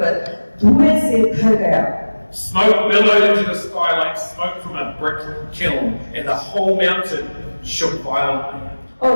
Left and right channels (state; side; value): inverted; both; correlation -1.00